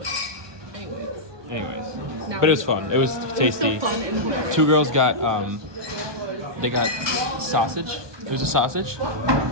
Anyways. But it was fun. It was tasty. Two girls got they got sausage. It was a sausage.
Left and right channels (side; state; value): left; late; 1.2 ms